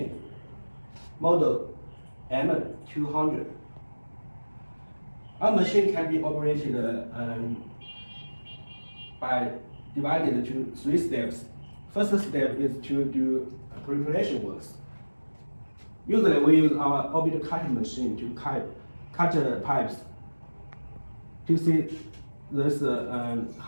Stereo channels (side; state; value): both; inverted; correlation -1.00